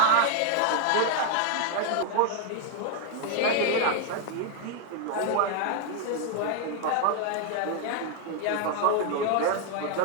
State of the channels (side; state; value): both; different; correlation 0.00